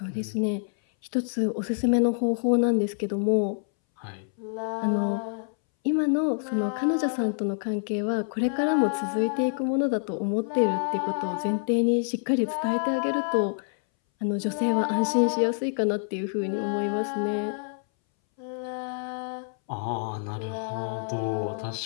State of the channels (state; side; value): silent; right; 60 dB below the other